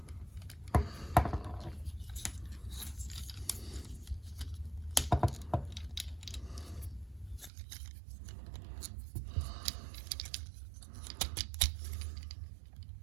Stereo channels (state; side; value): drops out; left; at 7.5 s